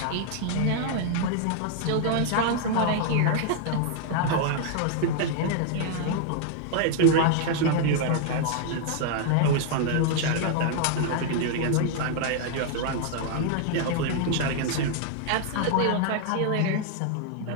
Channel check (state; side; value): different; both; correlation 0.00